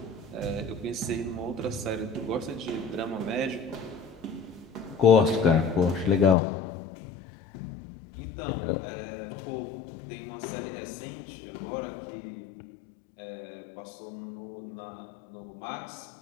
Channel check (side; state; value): right; drops out; at 6.4 s